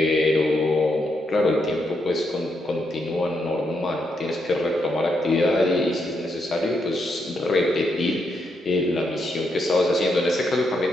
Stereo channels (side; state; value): both; normal; correlation 0.80